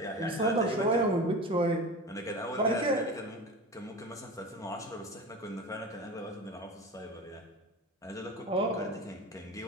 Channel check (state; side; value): normal; both; correlation 0.31